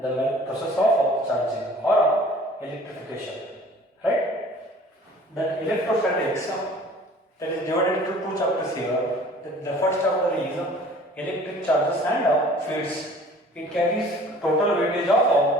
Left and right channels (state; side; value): normal; both; correlation 0.49